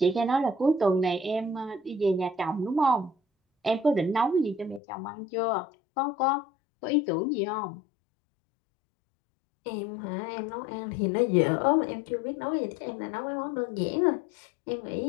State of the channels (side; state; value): right; drops out; at 4.8 s